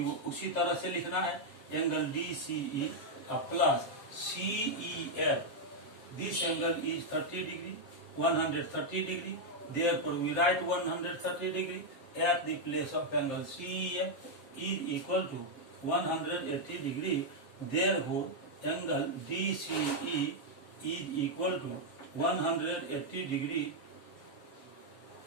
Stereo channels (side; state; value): right; late; 7.5 ms